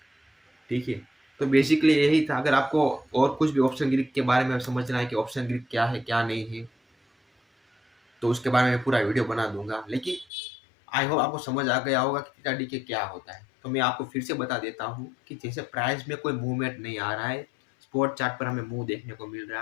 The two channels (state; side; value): drops out; right; at 10.2 s